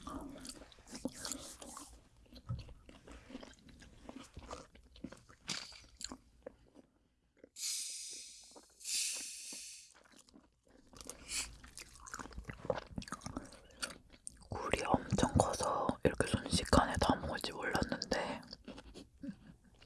굴이 엄청 커서 이렇게 순식간에 다 먹을지 몰랐는데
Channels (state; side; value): identical; both; correlation 1.00